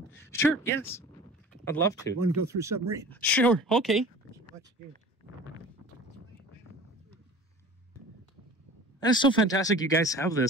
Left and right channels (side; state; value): both; normal; correlation 0.41